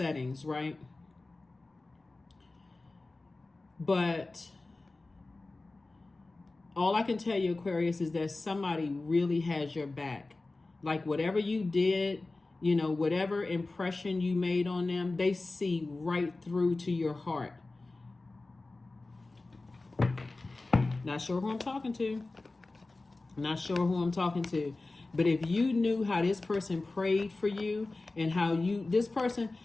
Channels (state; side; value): quieter; right; 3.3 dB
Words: right? But all I can tell you, Aquarius, is that somebody really has your back. Like, whatever you did, whatever impression you made on them, they see right through to your heart. Not sure who I'm talking to. But if you knew how this person prayed for you, and how this person,